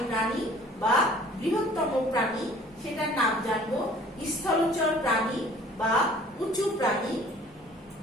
প্রাণী বা বৃহত্তম প্রাণী সেটার নাম জানবো। স্থলচর প্রাণী বা উঁচু প্রাণী।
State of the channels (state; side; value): normal; both; correlation 0.51